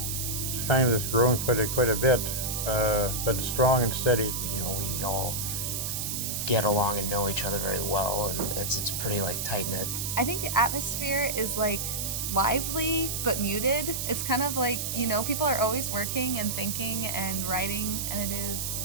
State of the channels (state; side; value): noise; right; hiss, 2 dB below the sound